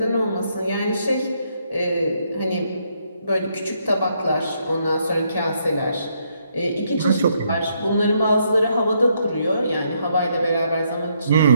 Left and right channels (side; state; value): both; inverted; correlation -0.74